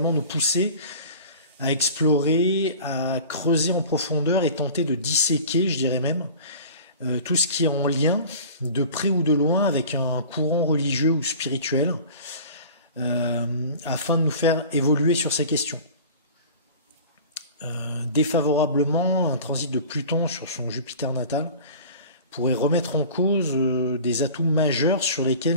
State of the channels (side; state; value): both; inverted; correlation -0.40